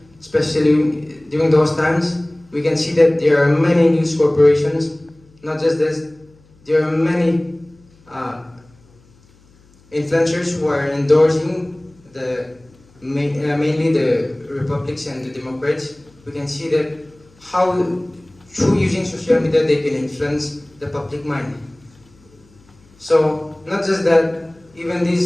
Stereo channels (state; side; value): noise; left; hum, 30 dB below the sound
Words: especially during those times. We can see that there are many news corporations. Not just this, there are many influencers who are endorsing mainly the Republicans and the Democrats. We can see that how through using social media they can influence the public mind. So not just that, even